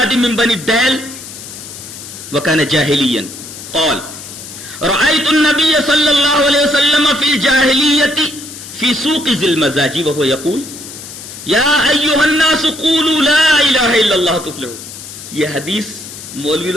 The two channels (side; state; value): left; noise; hiss, 13 dB below the sound